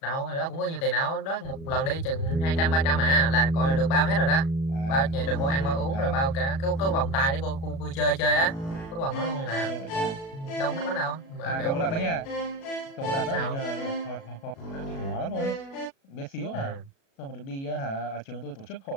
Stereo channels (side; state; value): right; late; 36 ms